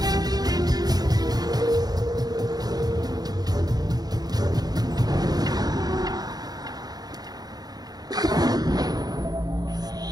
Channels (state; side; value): late; left; 0.19 ms